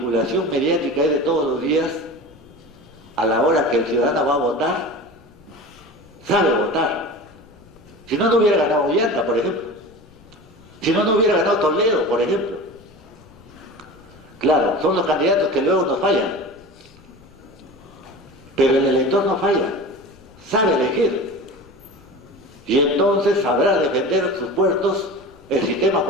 mediática es de todos los días, a la hora que el ciudadano va a votar, sabe votar. Si no, no hubiera ganado Ollanta, por ejemplo. Si no, no hubiera ganado Toledo, por ejemplo. Claro, son los candidatos que luego nos fallan. Pero el elector no falla, sabe elegir. Y entonces sabrá defender sus puertos, el sistema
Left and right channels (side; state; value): left; noise; rumble, 26 dB below the sound